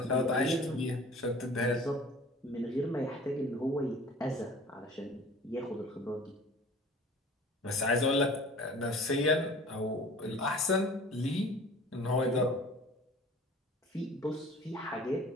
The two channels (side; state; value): both; normal; correlation 0.45